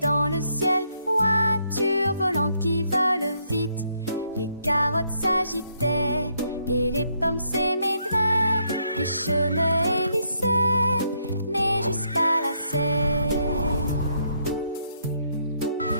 le ciel, voitures volantes qui volent vite. Les carottes s'agitaient et les pommes s'émaidraient. Les chemins hélissaient, mais jusqu'à la serre.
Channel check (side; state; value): both; inverted; correlation -0.74